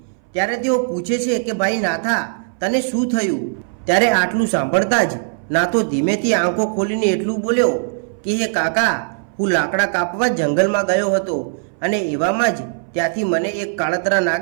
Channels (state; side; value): silent; left; 63 dB below the other